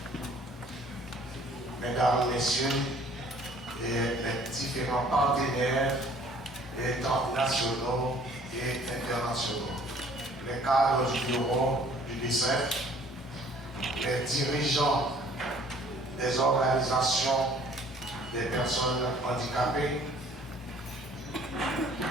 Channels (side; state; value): both; normal; correlation 0.55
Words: Mesdames, Messieurs, et les différents partenaires nationaux et internationaux, les cadres du bureau du DICEF, les dirigeants des organisations des personnes handicapées,